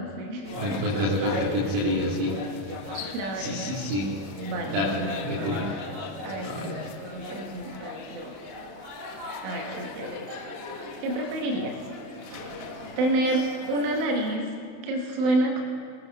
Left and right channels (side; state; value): left; late; 31 ms